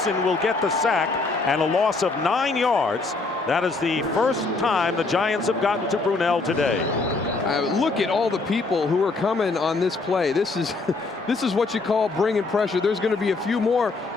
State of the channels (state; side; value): quieter; right; 3.8 dB